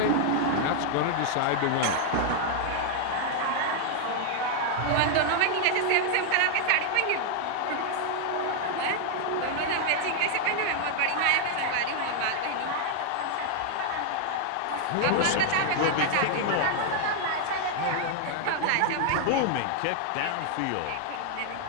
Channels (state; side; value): different; both; correlation 0.00